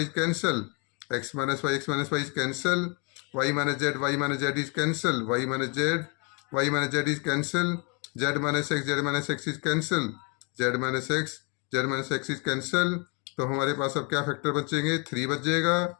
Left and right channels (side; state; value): right; quieter; 31.9 dB